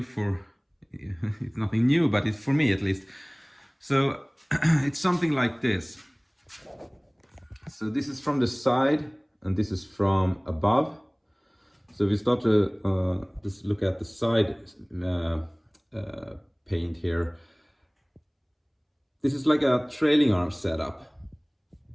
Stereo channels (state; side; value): identical; both; correlation 1.00